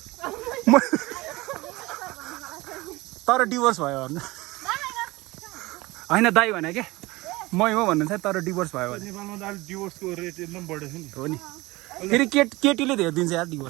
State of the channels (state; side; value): quieter; left; 21.1 dB